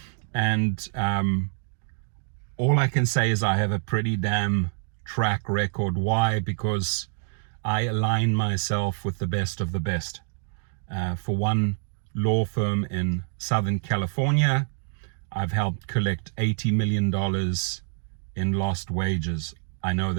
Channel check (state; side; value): silent; left; digital silence